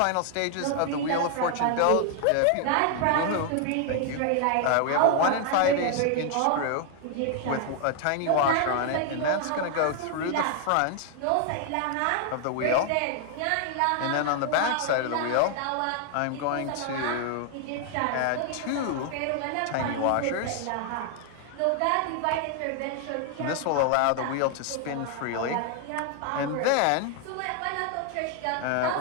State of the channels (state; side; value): different; both; correlation 0.00